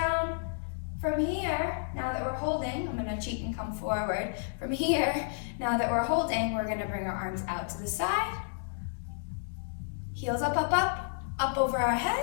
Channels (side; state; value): right; silent; digital silence